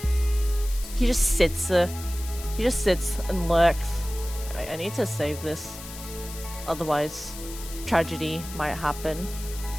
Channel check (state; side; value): noise; left; hiss, 13 dB below the sound